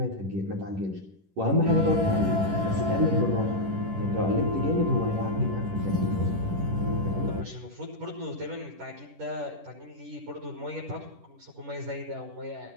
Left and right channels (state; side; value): late; left; 10 ms